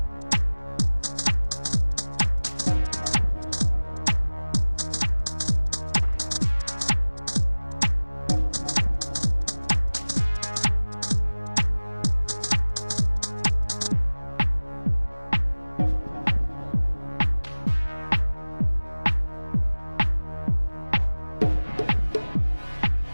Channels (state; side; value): inverted; both; correlation -1.00